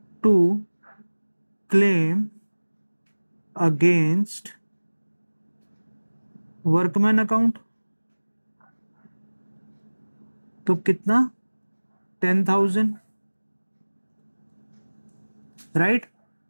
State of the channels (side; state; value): both; inverted; correlation -1.00